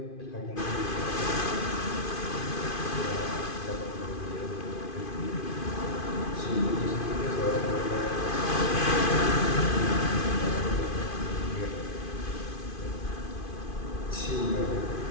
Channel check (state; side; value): late; right; 2.5 ms